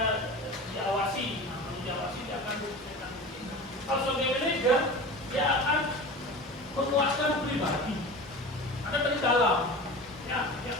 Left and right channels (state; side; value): normal; both; correlation 0.33